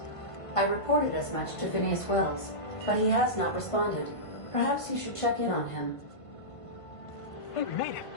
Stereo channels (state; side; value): late; right; 1.5 ms